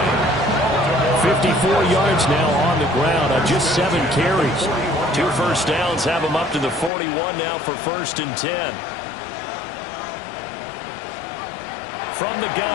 54 yards now on the ground on just 7 carries. 2 first downs have him up to the 41 now for 1st and 10. From the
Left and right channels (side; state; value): right; drops out; at 6.9 s